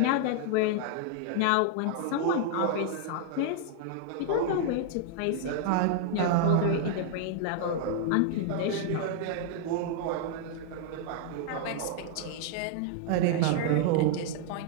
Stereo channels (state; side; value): different; both; correlation -0.01